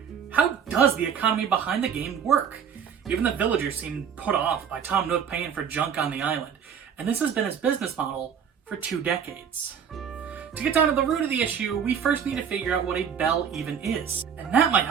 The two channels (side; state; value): left; quieter; 7.5 dB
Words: How does the economy behind the game work? Even the villagers seem put off by Tom Nook paying for junk on the island, and this has been his business model for 2 decades. To get down to the root of the issue, we first need to figure out what a bell even is, and that might